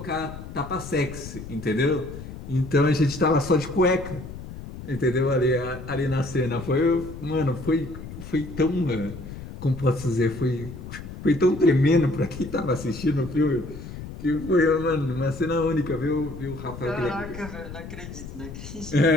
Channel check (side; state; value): left; noise; rumble, 12 dB below the sound